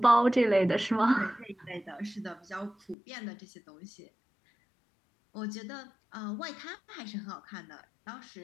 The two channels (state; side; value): drops out; right; at 3.0 s